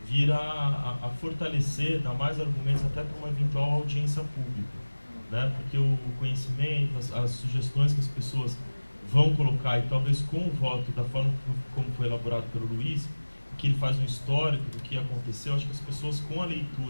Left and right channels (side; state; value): both; inverted; correlation -1.00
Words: a fortalecer, dar mais argumentos até para uma eventual audiência pública, né? Porque o conhecimento, as sugestões que as pessoas vão colocar, e talvez com o voto da forma como foi elaborado pelo Luiz, que ele faz um histórico do que aconteceu, acho que as pessoas com a